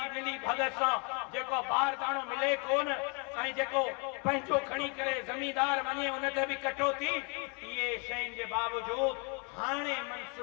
मिली भगत सां जेको बारदाणो मिले कोन, ऐं जेको पंहिंजो खणी करे ज़मींदार वञे उन ते बि कटौती। इहे शयुनि जे बावजूद हाणे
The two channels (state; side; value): quieter; right; 34.7 dB